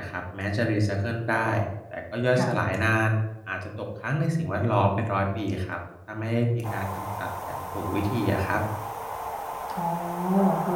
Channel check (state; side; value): identical; both; correlation 1.00